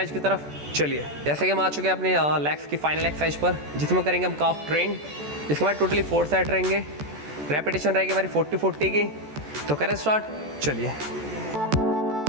की तरफ। चलिए, जैसे कि हम आ चुके हैं अपने लेग्स की फाइनल एक्सरसाइज पर, जिसमें करेंगे हम काफ ट्रेन। इसके बाद टोटली 4 सेट रहेंगे, रेपिटेशन रहेगी हमारी 40-40 की। तो करें स्टार्ट, चलिए।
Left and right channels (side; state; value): left; late; 14 ms